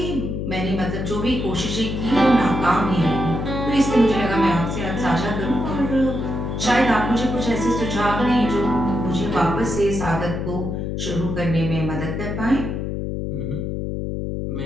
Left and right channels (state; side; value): noise; left; hum, 3 dB below the sound